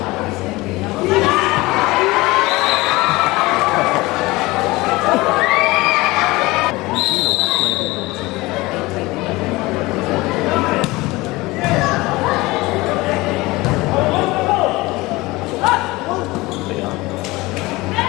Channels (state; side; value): quieter; right; 21.2 dB